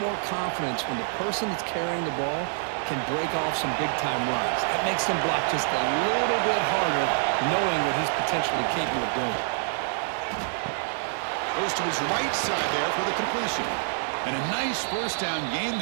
confidence when the person that's carrying the ball can break off some big-time runs. That makes them block just a little bit harder, knowing what he's potentially capable of doing. Goes to his right side there for the completion. And a nice first down gain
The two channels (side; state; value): left; silent; digital silence